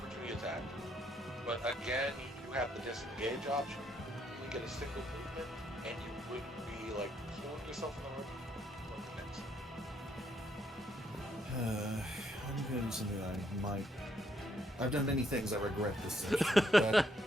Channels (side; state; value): both; normal; correlation 0.73